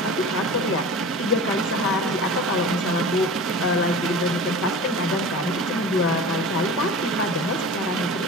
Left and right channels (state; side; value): normal; both; correlation 0.35